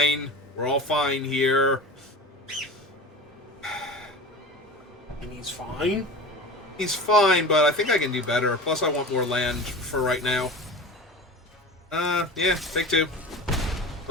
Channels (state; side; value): normal; both; correlation 0.33